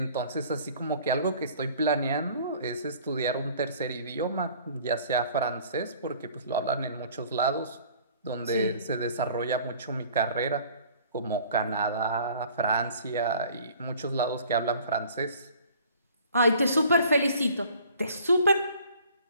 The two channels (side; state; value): both; inverted; correlation -0.52